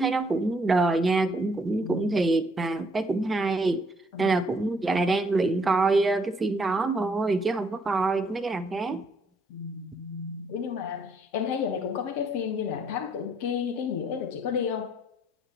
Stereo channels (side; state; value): both; normal; correlation 0.68